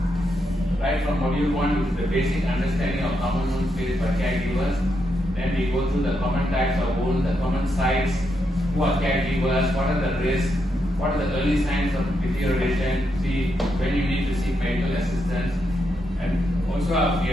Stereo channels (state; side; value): normal; both; correlation 0.82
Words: Right from module 1, which is the basic understanding of common wounds faced by caregivers. Then we go through the common types of wounds, the common sites, who are caregivers, what are the risks, what are the early signs of deterioration, see when you need to seek medical assistance. And also we